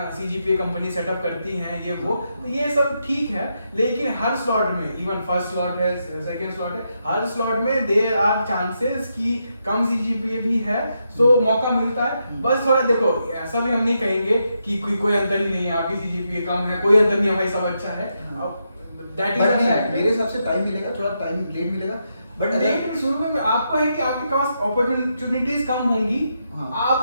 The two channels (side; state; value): both; inverted; correlation -0.82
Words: सीजीपीए कंपनी सेटअप करती हैं ये वो, तो ये सब ठीक है, लेकिन हर स्लॉट में, इवन फर्स्ट स्लॉट है सेकंड स्लॉट है, हर स्लॉट में देयर आर चांसेस कि कम सीजीपीए भी है, तो मौका मिलता है। बस थोड़ा देखो, ऐसा भी हम नहीं कहेंगे कि कोई अंतर ही नहीं है, आपकी सीजीपीए कम है, कोई अंतर नहीं है भाई, सब अच्छा है। अब दैट इज बट अ नहीं, फैक्ट। मेरे हिसाब से टाइम मिलेगा, थोड़ा टाइम लेट मिलेगा, बट लेकिन शुरू में आपको है कि आपके पास अपॉर्चुनिटीज कम होंगी, हाँ।